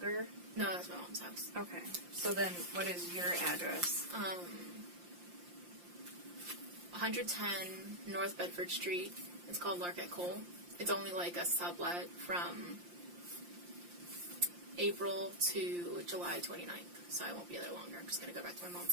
No, that's my mom's house. Okay. So then, what is your address? 110 North Bedford Street. It's called Larket Cole. It's only like a sublet from April to July 29th, so I won't be there longer. I'm just going to go back to my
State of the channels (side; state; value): left; late; 5.7 ms